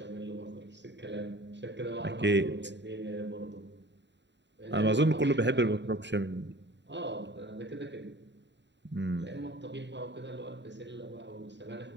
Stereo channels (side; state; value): left; late; 0.52 ms